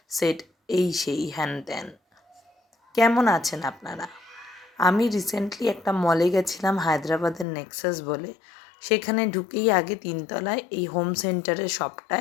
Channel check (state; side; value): drops out; right; at 7.5 s